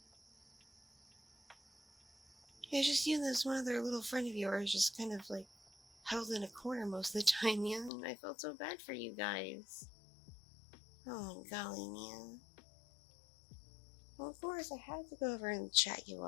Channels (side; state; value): right; drops out; at 7.9 s